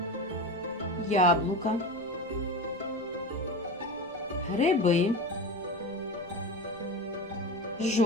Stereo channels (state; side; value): noise; left; rumble, 30 dB below the sound